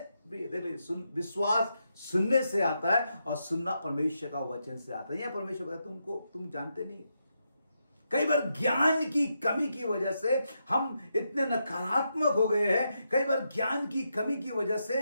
देखिए, विश्वास सुनने से आता है और सुनना परमेश्वर का वचन से आता है। यह परमेश्वर कहता है तुम जानते नहीं, कई बार ज्ञान की कमी की वजह से हम इतने नकारात्मक हो गए हैं। कई बार ज्ञान की कमी की वजह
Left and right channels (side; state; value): both; inverted; correlation -0.83